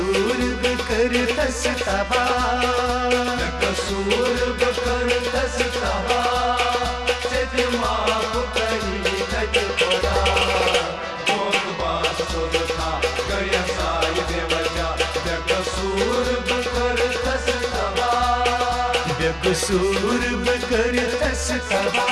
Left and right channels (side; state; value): both; identical; correlation 1.00